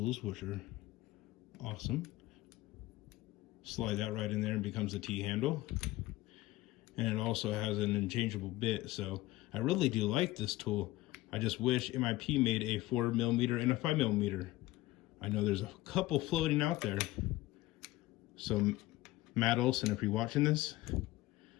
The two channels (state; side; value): quieter; right; 17.7 dB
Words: which are awesome. Slide that right in there and becomes a T-handle. And it also has an interchangeable bit, so I really do like this tool. I just wish MIP made a 4 millimeter and a 5 millimeter. I know there's a couple floating out there. So Matt Olson, if you're watching this,